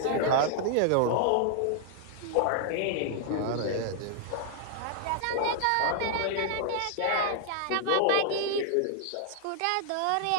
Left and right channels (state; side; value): different; both; correlation -0.01